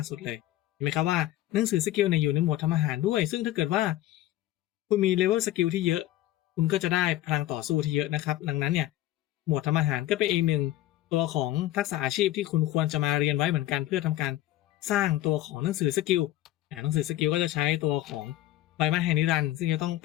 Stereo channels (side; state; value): right; quieter; 14.7 dB